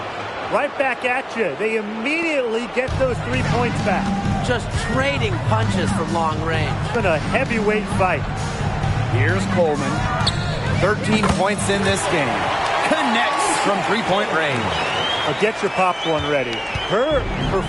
Right back at you. They immediately get those 3 points back. Just trading punches from long range. It's been a heavyweight fight. Here's Coleman. 13 points in this game. Connects from three-point range. Get your popcorn ready. Her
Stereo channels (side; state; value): both; identical; correlation 1.00